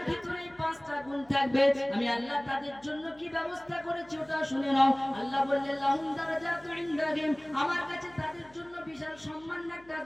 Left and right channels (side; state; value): left; noise; hum, 28 dB below the sound